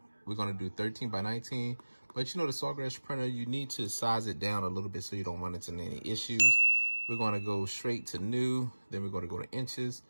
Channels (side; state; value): both; inverted; correlation -1.00